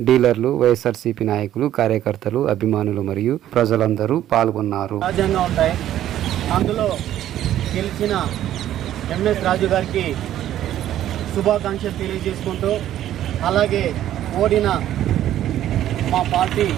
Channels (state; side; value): quieter; left; 12.2 dB